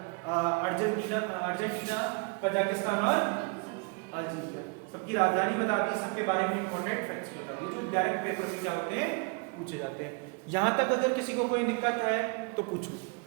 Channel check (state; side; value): quieter; left; 32.5 dB